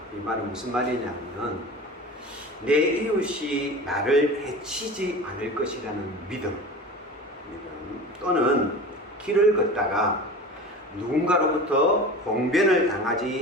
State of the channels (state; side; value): normal; both; correlation 0.34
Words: 이 말은 무슨 말이냐면 내 이웃이 나를 해치지 않을 것이라는 믿음 또는 길을 걷다가 누군가로부터 봉변을